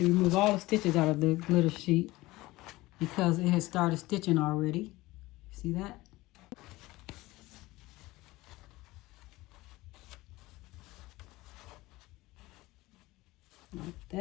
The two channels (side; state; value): right; quieter; 19.4 dB